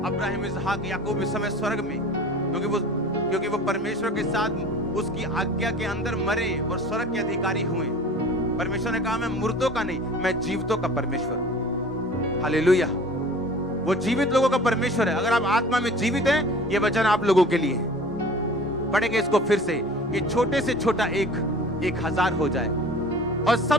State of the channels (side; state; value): both; normal; correlation 0.43